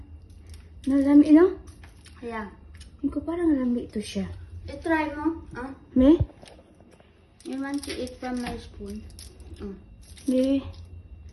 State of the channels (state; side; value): identical; both; correlation 1.00